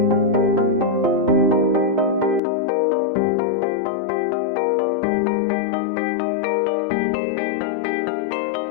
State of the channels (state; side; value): drops out; right; at 2.4 s